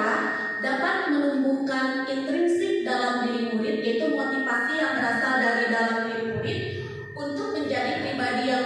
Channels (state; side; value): identical; both; correlation 1.00